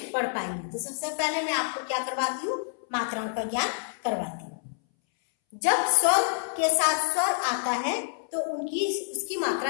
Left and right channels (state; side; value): silent; right; 60 dB below the other